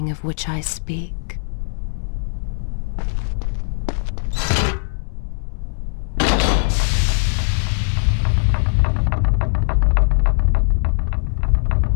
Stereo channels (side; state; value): right; silent; digital silence